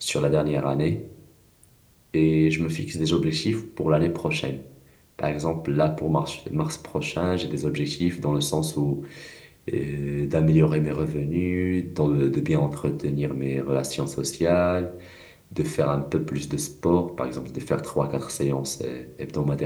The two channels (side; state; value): both; identical; correlation 1.00